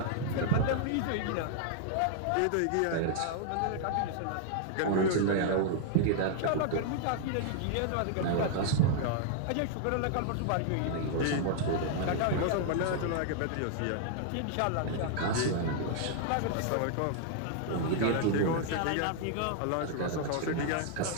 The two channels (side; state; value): both; different; correlation 0.00